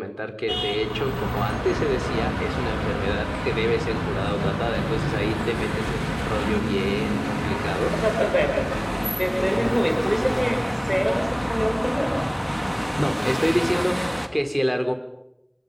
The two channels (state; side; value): identical; both; correlation 1.00